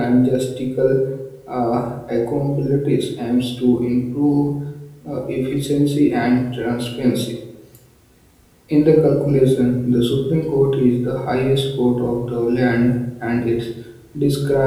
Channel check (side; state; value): both; identical; correlation 1.00